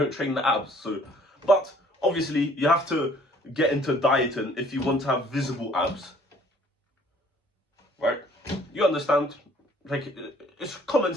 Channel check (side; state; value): both; normal; correlation 0.57